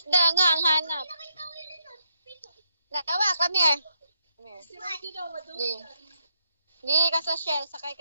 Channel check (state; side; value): inverted; both; correlation -0.78